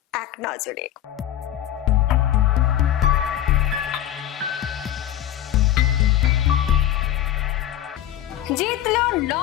এক নজরে। জিতল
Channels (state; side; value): quieter; right; 12.0 dB